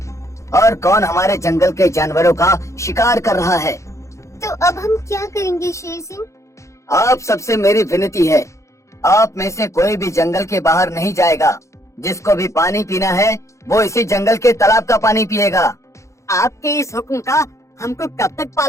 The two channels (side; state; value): right; late; 0.14 ms